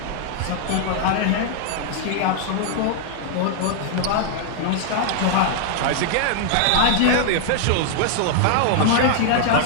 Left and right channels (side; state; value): both; different; correlation 0.00